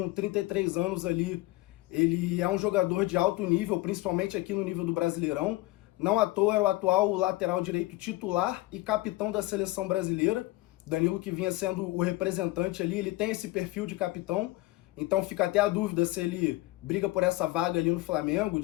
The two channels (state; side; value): quieter; right; 19.4 dB